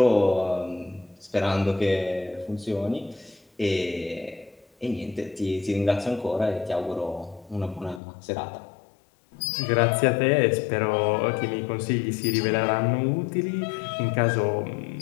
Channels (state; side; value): drops out; right; at 8.0 s